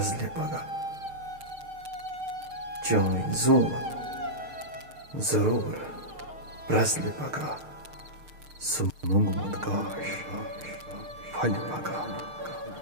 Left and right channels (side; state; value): left; late; 6.5 ms